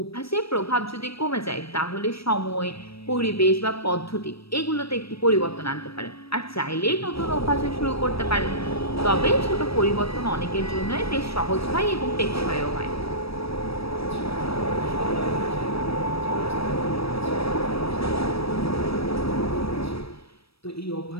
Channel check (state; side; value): late; right; 0.77 ms